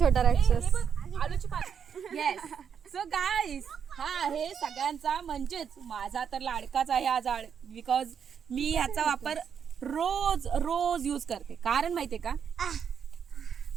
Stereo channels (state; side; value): quieter; left; 7.5 dB